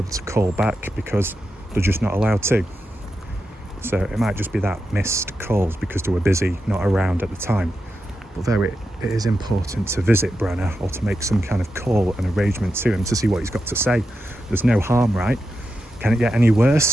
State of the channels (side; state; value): both; normal; correlation 0.88